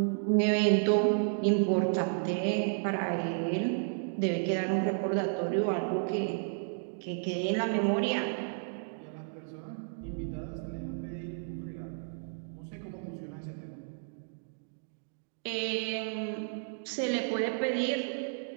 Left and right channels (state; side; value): silent; left; digital silence